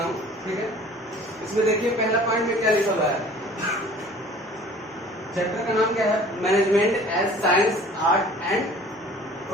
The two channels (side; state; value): both; normal; correlation 0.48